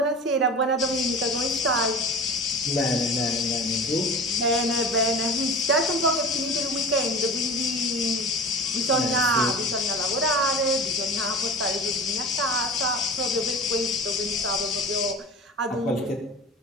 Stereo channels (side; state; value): both; normal; correlation 0.34